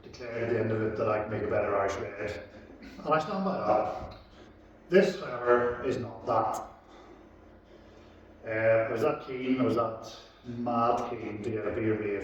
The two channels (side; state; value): both; identical; correlation 1.00